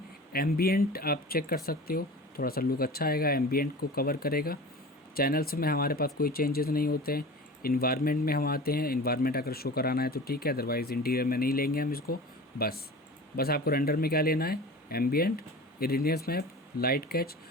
एम्बियंट आप चेक कर सकते हो, थोड़ा सा लुक अच्छा आएगा, एम्बियंट को कवर करेगा। चैनल्स में हमारे पास कोई चेंजेस नहीं होते हैं। इन्वायरमेंट में हम आते हैं, इन्वायरमेंट अगर शो कराना है तो ठीक है, अदरवाइज़ इंटीरियर में नहीं लेंगे हम इसको। बस आपको रेंडर में क्या लेना है, ambient, irradiance map, light catch,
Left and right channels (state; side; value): normal; both; correlation 0.36